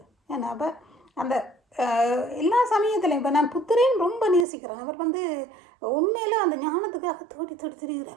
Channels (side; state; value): left; drops out; at 4.5 s